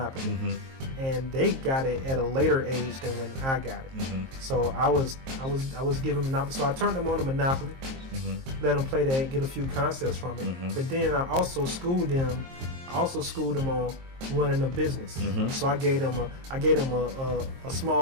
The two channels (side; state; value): left; late; 23 ms